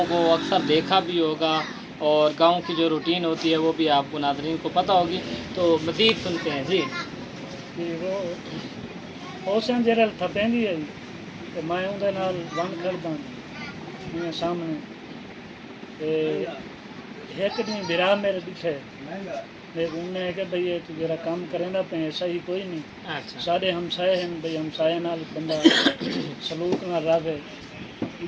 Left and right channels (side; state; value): both; identical; correlation 1.00